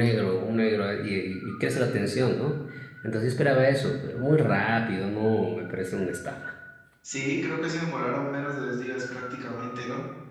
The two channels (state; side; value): identical; both; correlation 1.00